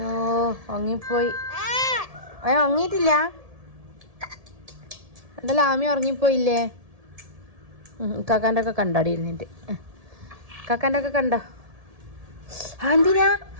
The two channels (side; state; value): left; late; 1.7 ms